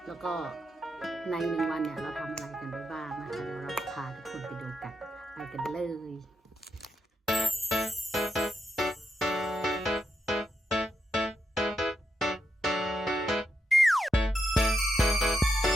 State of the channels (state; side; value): normal; both; correlation 0.83